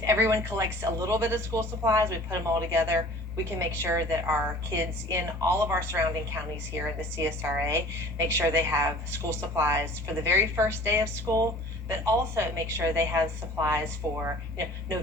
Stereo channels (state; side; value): normal; both; correlation 0.47